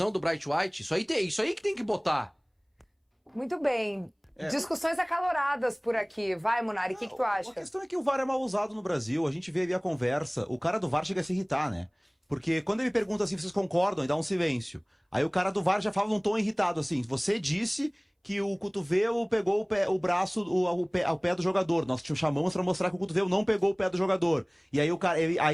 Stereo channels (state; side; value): identical; both; correlation 1.00